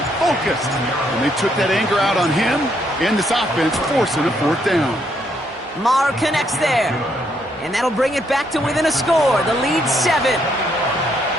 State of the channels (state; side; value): normal; both; correlation 0.73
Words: focused. And they took that anger out on him and this offense, forcing a 4th down. Maher connects there. And that'll bring it back to within a score. The lead 7.